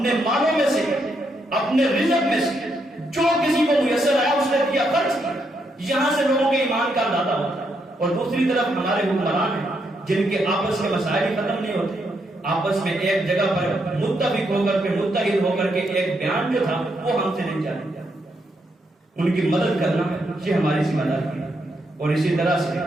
مالوں میں سے اپنے رزق میں سے جو کسی کو میسر آیا اس نے دیا، خرچ کیا۔ یہاں سے لوگوں کے ایمان کا اندازہ ہوتا ہے۔ اور دوسری طرف ہمارے حکمران ہیں جن کے آپس کے مسائل ختم نہیں ہوتے، آپس میں ایک جگہ پر متفق ہو کر کے متحد ہو کر کے ایک بیان جو تھا وہ ہم سے نہیں جانے۔ ان کی مدد کرنا یہ ہماری ذمہ داری ہے، اور اسی طرح سے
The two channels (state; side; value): normal; both; correlation 0.78